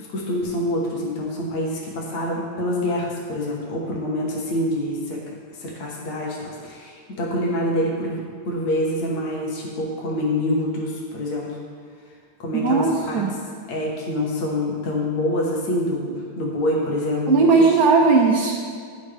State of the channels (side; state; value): right; late; 8.8 ms